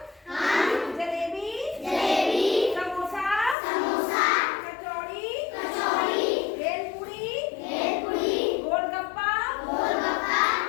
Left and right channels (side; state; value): right; drops out; at 3.6 s